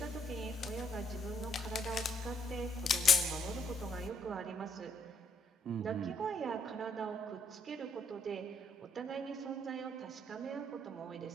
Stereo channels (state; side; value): normal; both; correlation 0.70